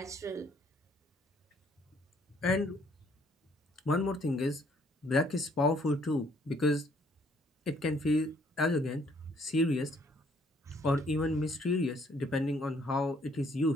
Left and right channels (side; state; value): both; normal; correlation 0.64